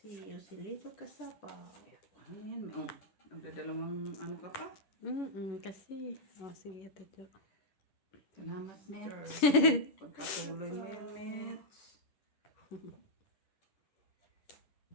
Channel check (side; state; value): right; late; 11 ms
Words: Yosilito Casapa. Ano yan? Oh, nagdadalawang ano ka pa? Kasi. Oh, sige, Ate Jo. Salamat, Mets. Pagkatuloy mo yan, Mets.